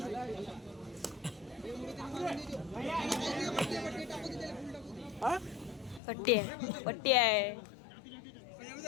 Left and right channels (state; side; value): drops out; right; at 6.0 s